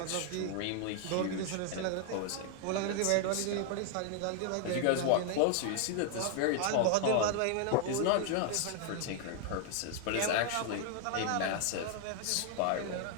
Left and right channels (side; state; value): both; different; correlation 0.00